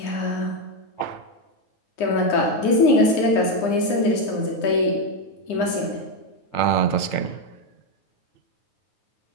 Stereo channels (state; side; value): late; right; 9.8 ms